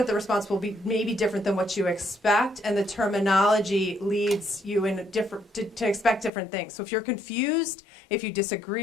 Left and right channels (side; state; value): right; drops out; at 6.3 s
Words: the response will be maybe different than what you expect, and the terminology leads you in a different to expect different things. So if you're confused, if you